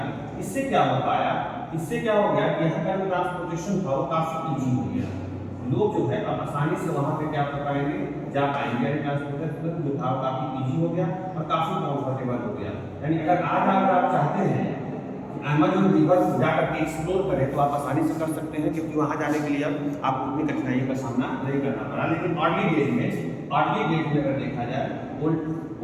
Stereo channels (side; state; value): both; identical; correlation 1.00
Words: इससे क्या हो पाया, इससे क्या हो गया कि यहाँ का जो ट्रांसपोर्टेशन था वो काफ़ी ईजी हो गया। लोग जो है अब आसानी से वहाँ पे क्या कर पाएंगे, जा पाएंगे, यानी ट्रांसपोर्टेशन जो था वो काफ़ी ईजी हो गया और काफ़ी कंफर्टेबल हो गया। यानी अगर आज अगर आप चाहते हैं अमेज़न रिवर जाकर के एक्सप्लोर करें तो आप आसानी से कर सकते हैं, क्योंकि वहाँ जाने के लिए अब आपको उतनी कठिनाइयों का सामना नहीं करना पड़ा। लेकिन अर्ली डेज में अगर देखा जाए,